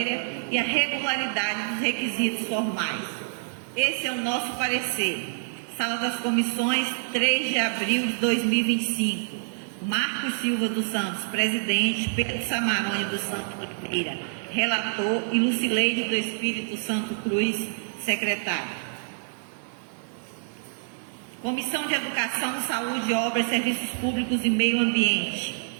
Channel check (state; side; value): silent; left; digital silence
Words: e a regularidade dos requisitos formais. Esse é o nosso parecer. Sala das Comissões, 3 de abril de 2025. Marcos Silva dos Santos, presidente, Pedro Samarone dos Santos Oliveira, relator, e Lucileide do Espírito Santo Cruz, secretário. Comissão de Educação, Saúde, Obras, Serviços Públicos e Meio Ambiente.